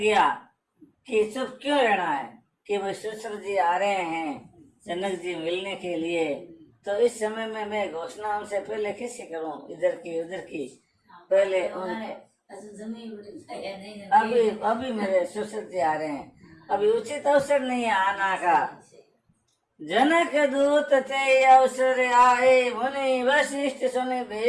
कि चुप क्यों रहना है, कि भाई सुश्र जी आ रहे हैं जनक जी मिलने के लिए। तो इस समय में मैं घोषणा उनसे पहले कैसे करूं, इधर की उधर की। पहले अभी मेरे सुश्र जी आ रहे हैं, अभी उचित अवसर नहीं है आना का। जनक दूत ते अवसर आए, मुनि वशिष्ठ सुने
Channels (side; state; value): both; identical; correlation 1.00